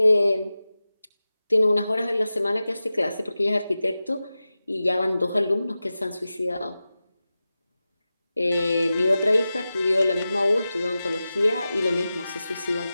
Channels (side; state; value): both; inverted; correlation -0.94